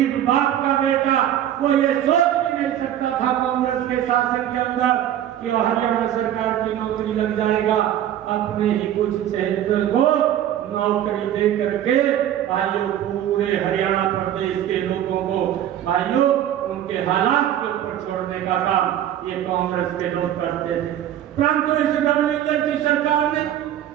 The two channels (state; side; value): quieter; left; 11.3 dB